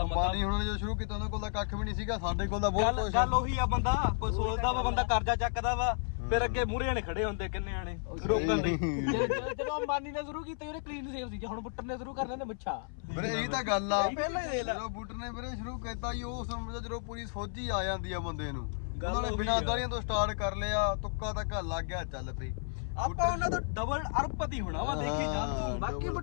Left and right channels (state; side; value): silent; right; 56 dB below the other